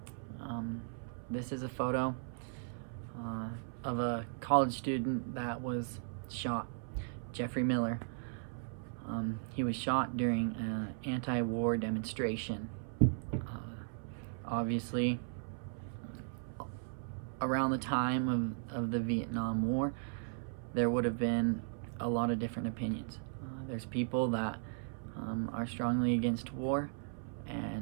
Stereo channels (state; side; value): silent; left; 53 dB below the other